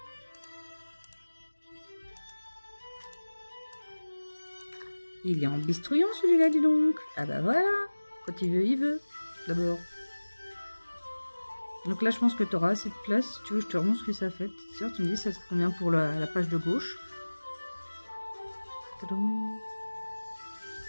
Il est en bistrouillon celui-là, dis donc. Ah bah voilà. Quand il veut, d'abord. Donc là, je pense que tu auras assez de place. Si tu veux, je te remontre ce que ça fait. Sûr, tu me dis ça te convient pour la page de gauche. Tadam.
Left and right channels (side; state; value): both; inverted; correlation -1.00